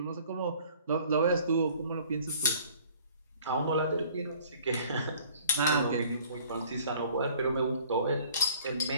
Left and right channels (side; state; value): both; inverted; correlation -0.53